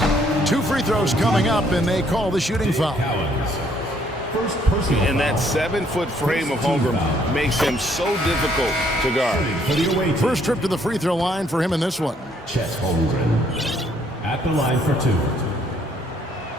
2 free throws coming up, and they call the shooting foul. And that 7-foot frame of Holmgren makes him so difficult to guard. First trip to the free throw line for him in this one. Chet Holmgren at the line for 2.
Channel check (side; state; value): both; normal; correlation 0.66